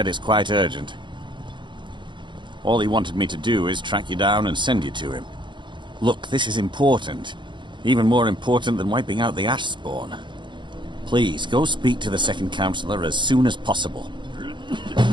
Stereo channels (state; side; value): late; left; 0.23 ms